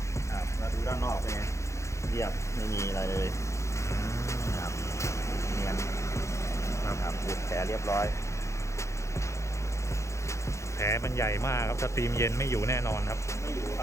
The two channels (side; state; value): right; late; 0.14 ms